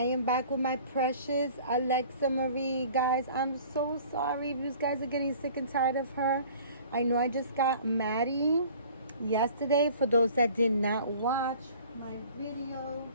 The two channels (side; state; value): both; inverted; correlation -0.49